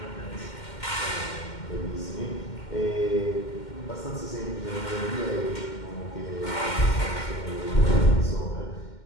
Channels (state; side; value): late; right; 2.1 ms